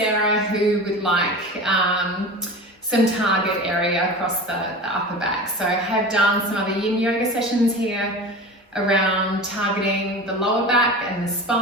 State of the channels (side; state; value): both; normal; correlation 0.33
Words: who would like some target area across the upper back. So I have done some other yin yoga sessions here around targeting the lower back and the